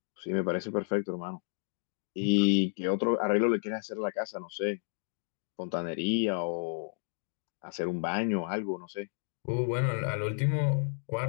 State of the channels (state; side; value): silent; right; digital silence